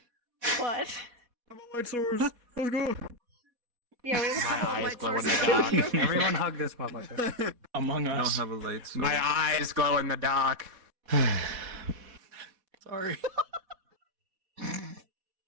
But Light source. Let's go. yeah, we have a couple of eyes light glow in sources. the dark. Everyone hug this motherfucker. Among I Us. don't have a light source. My eyes glow in the dark. Sorry.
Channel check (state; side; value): late; left; 4.1 ms